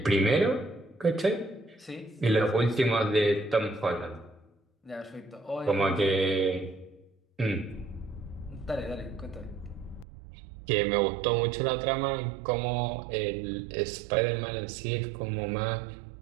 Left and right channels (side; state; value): left; drops out; at 10.1 s